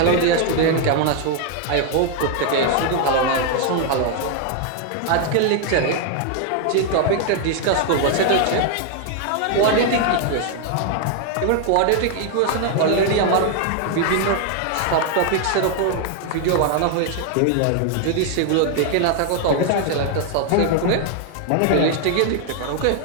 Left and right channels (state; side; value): different; both; correlation 0.00